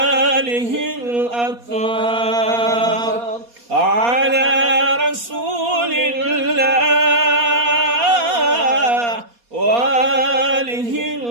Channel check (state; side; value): late; left; 4.2 ms